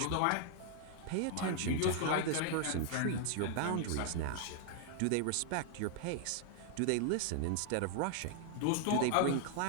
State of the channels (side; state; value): both; different; correlation 0.00